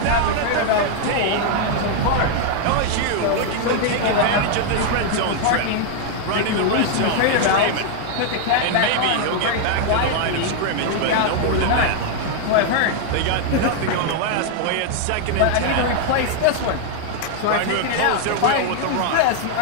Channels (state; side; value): different; both; correlation 0.00